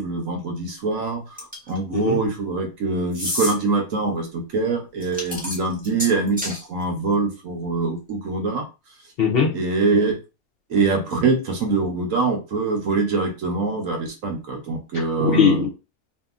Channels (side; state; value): both; normal; correlation -0.05